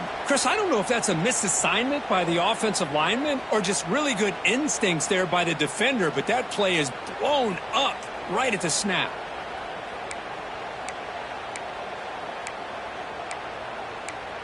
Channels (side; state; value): both; identical; correlation 1.00